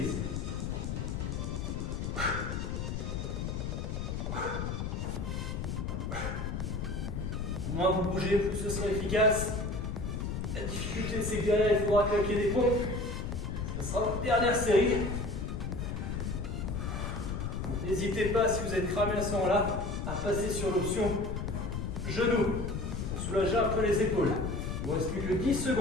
Moins vous bougez, plus ce sera efficace. La difficulté, c'est que derrière, il faudra claquer des pompes. Ce sera votre dernière série. N'hésitez pas, si vous êtes cramé à ce moment-là, à passer sur l'option genou pour soulager un peu les épaules. Il ne vous reste plus que 10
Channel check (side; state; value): left; noise; rumble, 3 dB below the sound